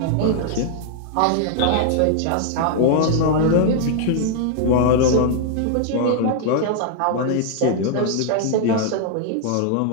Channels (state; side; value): different; both; correlation -0.01